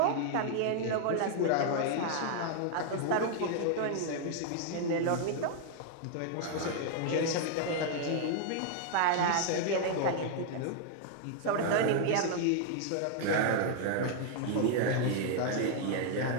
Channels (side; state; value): both; different; correlation 0.00